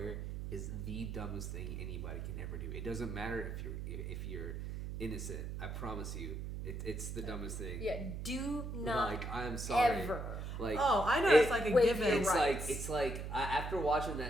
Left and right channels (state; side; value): noise; right; hum, 5 dB below the sound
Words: is the dumbest thing anybody can ever do. It doesn't matter if you're innocent. I promise you, it's the dumbest thing. Yeah, do not. I'm sorry. Ever. I know it's like a given. It's like after watching